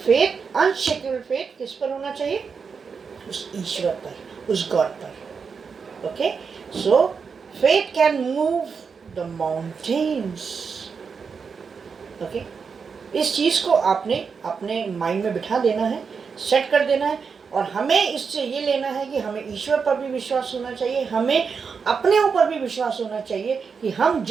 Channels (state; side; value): quieter; left; 5.7 dB